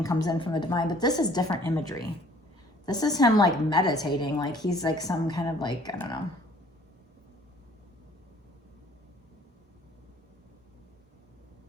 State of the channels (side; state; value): both; normal; correlation 0.56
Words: comes in from the divine. But this is different imagery. This is him like meditating, like he's like some kind of like, I don't know.